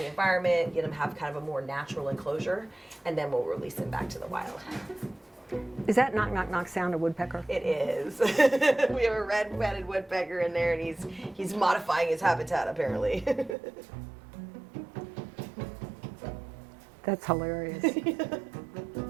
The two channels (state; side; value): drops out; left; at 13.6 s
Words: environment, get him have kind of a more natural enclosure, and then we'll release him back to the wild. Is that knock, knock, knock sound a woodpecker? It is. We have a red-headed woodpecker in there, and he's modifying his habitat apparently. That's hilarious.